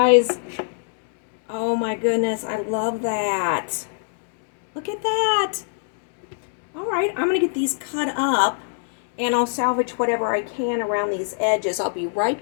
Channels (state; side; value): silent; right; digital silence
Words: Oh my goodness, I love that. Look at that. All right, I'm gonna get these cut up and I'll salvage whatever I can around these edges. I'll be right